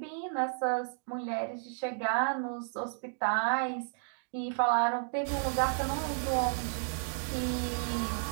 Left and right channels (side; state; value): left; silent; digital silence